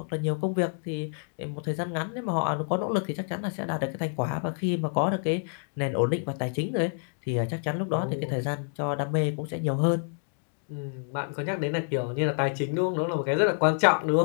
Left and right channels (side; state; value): right; silent; 58 dB below the other